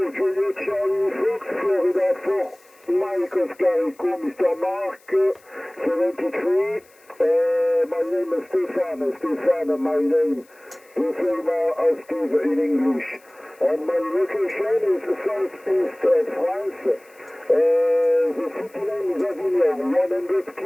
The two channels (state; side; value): noise; left; hiss, 30 dB below the sound